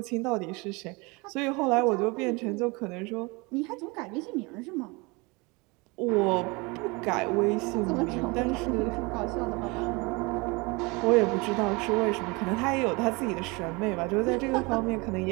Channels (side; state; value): left; quieter; 26.7 dB